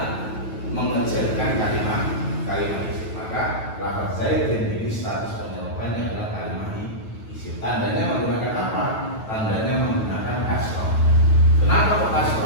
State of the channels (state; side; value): late; right; 9.2 ms